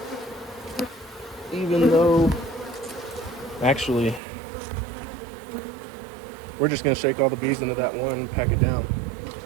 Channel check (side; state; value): left; drops out; at 4.2 s